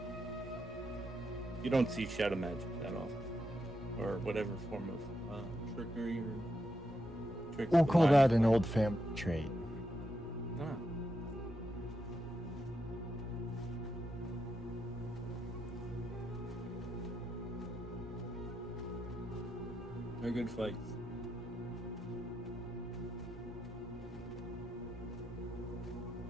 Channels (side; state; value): both; normal; correlation 0.83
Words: You don't see shadow magic that often. Or whatever form of trickery or tricks. We'll the call mind that an play. old family trait. Ah. They're good fights.